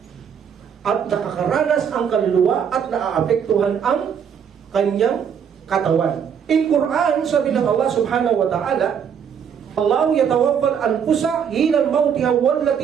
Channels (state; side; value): quieter; left; 7.7 dB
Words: At nakakaranas ang kaluluwa at naaapektuhan ang kanyang katawan. In Quran, sabi ng Allah subhanahu wa ta'ala, Allahu yatawaffal anfusa hinal mautiha